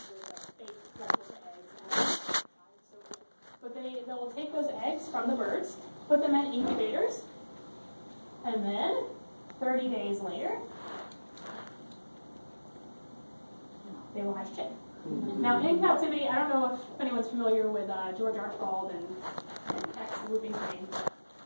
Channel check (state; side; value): inverted; both; correlation -1.00